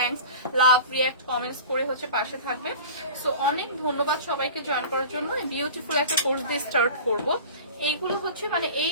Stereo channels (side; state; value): both; inverted; correlation -0.38